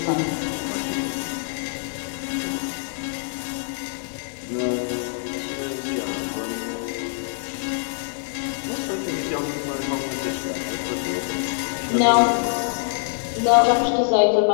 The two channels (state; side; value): silent; right; digital silence